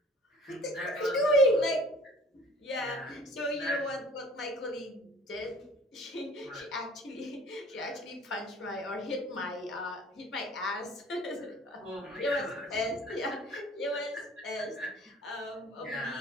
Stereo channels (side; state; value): both; normal; correlation 0.50